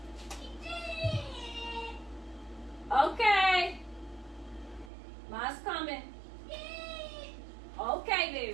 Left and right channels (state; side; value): drops out; left; at 4.9 s